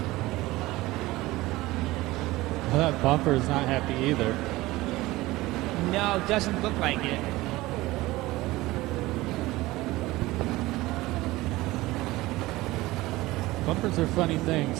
Well, that bumper is not happy either. No, doesn't look like it. Bumpers are funny things.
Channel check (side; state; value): left; quieter; 19.0 dB